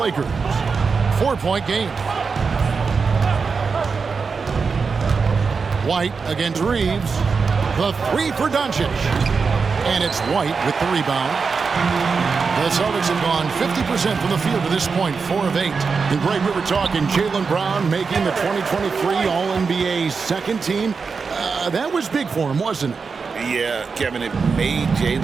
4-point game. White against Reeves. The 3 for Doncic. And it's White with the rebound. The Celtics have gone 50% from the field to this point, 4 of 8. And Greg, we were talking Jaylen Brown making the 2023 All-NBA second team. That was big for him, wasn't it? Yeah, Kevin, it made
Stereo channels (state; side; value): quieter; left; 5.1 dB